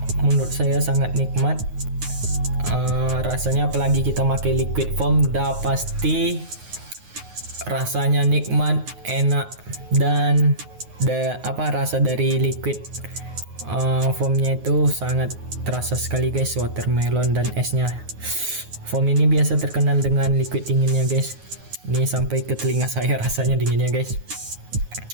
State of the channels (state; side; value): late; left; 9.4 ms